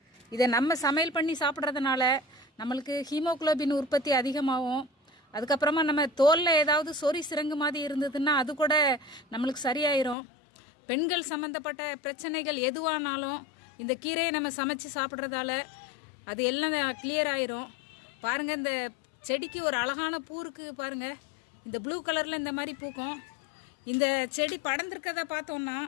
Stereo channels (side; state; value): right; drops out; at 10.2 s